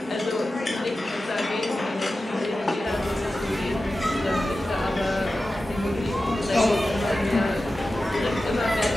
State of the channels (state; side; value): normal; both; correlation 0.94